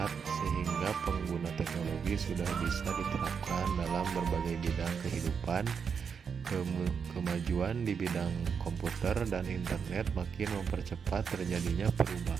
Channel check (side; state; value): left; quieter; 6.4 dB